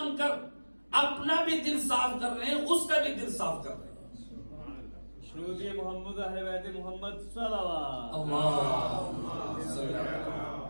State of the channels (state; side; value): inverted; both; correlation -1.00